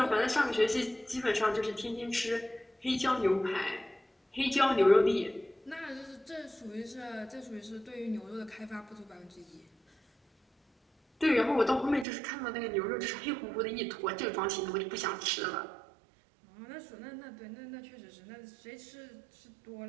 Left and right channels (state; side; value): drops out; left; at 12.1 s